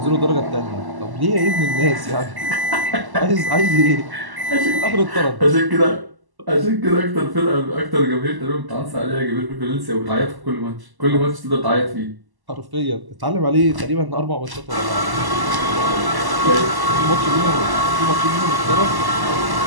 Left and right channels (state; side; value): late; left; 1.1 ms